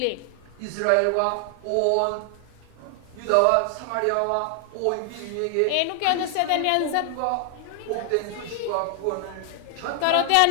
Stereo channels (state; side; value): different; both; correlation 0.00